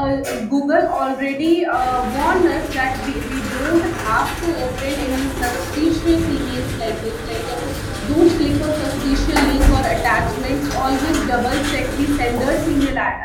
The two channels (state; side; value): identical; both; correlation 1.00